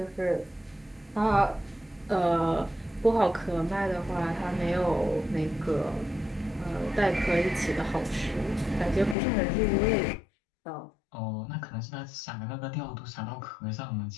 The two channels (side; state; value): right; drops out; at 9.2 s